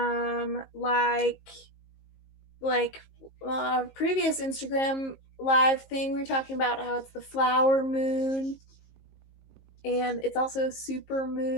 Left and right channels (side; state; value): right; late; 19 ms